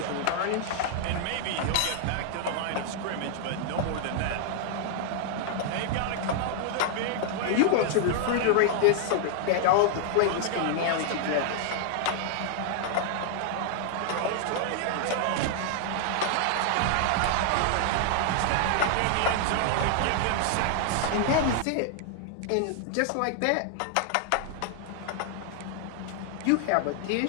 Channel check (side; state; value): both; different; correlation 0.00